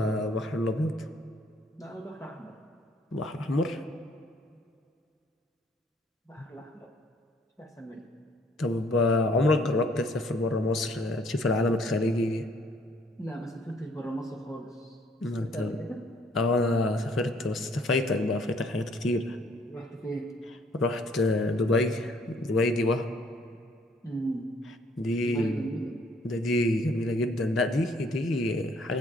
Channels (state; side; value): normal; both; correlation 0.62